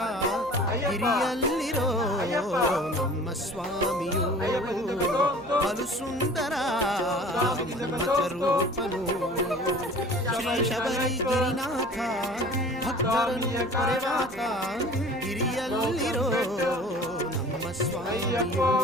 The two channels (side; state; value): right; noise; hum, 23 dB below the sound